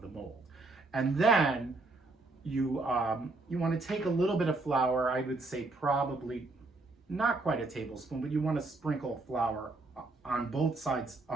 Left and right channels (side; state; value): left; quieter; 3.2 dB